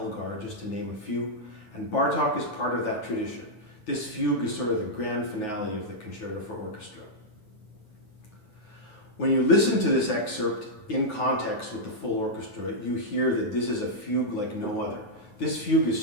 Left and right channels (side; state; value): right; late; 9.5 ms